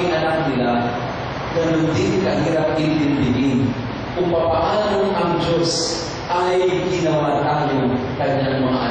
anak nila, ganun din kahirap intindihin kung paano ang Diyos ay ginawa tayo kanyang mga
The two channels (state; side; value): identical; both; correlation 1.00